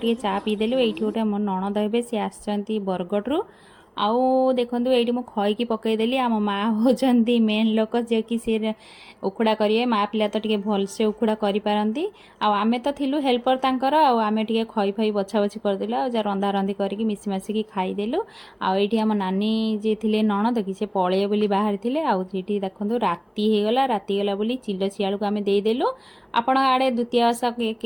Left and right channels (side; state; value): both; identical; correlation 1.00